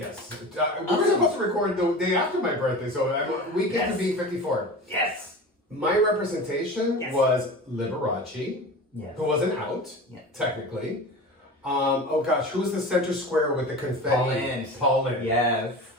We were supposed to record the day after my birthday, so we get to be 54. Yes! My representation was Liberace, yes. who wasn't out, technically. Oh gosh, who was the center square with the confetti? Paul Lynde. Yes.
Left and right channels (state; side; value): normal; both; correlation 0.32